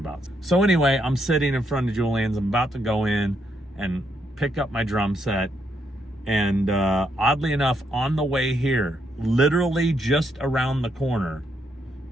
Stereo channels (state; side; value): normal; both; correlation 0.77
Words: So anyway, I'm sitting in front of Julian's. I'm about to go in and pick up my drum set. And oddly enough, on the way here, literally just around the corner